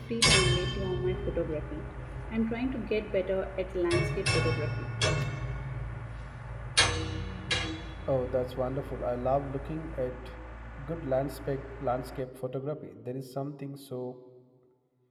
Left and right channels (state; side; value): identical; both; correlation 1.00